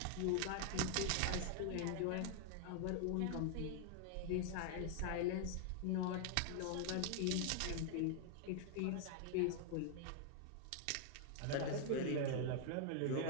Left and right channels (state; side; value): different; both; correlation 0.00